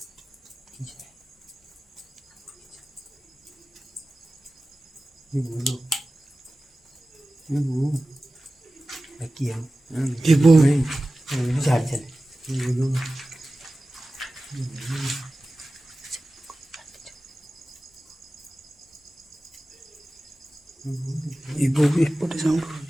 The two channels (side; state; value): both; normal; correlation 0.96